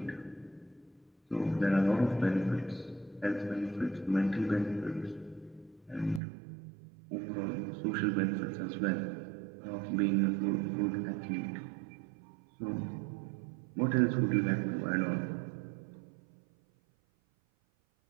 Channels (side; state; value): left; drops out; at 6.2 s